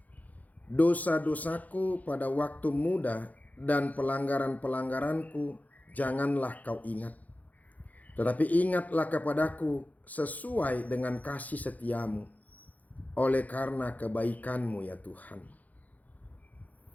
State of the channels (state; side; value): late; right; 0.078 ms